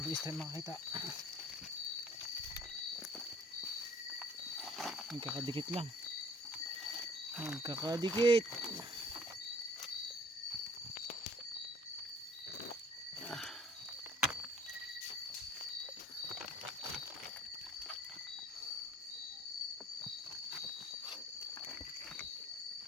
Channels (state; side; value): normal; both; correlation 0.53